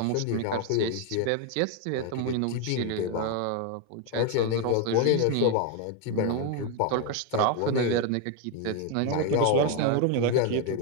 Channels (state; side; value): different; both; correlation 0.01